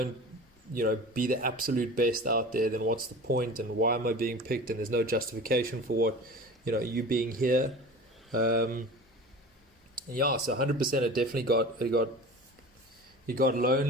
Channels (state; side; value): normal; both; correlation 0.37